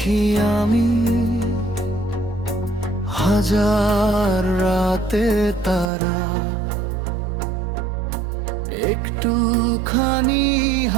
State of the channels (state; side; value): drops out; left; at 5.9 s